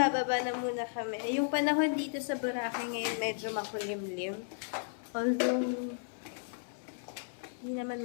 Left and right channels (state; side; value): silent; right; 55 dB below the other